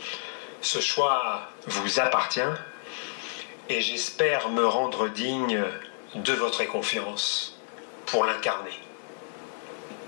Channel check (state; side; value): silent; right; digital silence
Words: Ce choix vous appartient et j'espère me rendre digne de votre confiance pour l'incarner.